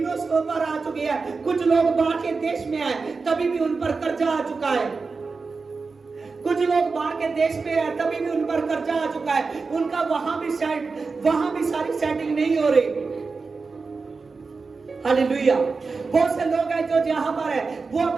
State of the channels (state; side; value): quieter; left; 4.4 dB